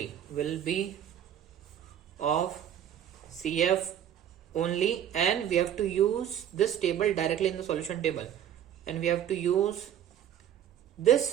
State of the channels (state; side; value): quieter; left; 10.1 dB